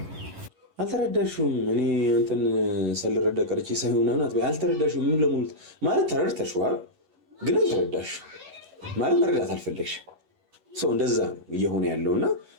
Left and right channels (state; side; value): late; left; 11 ms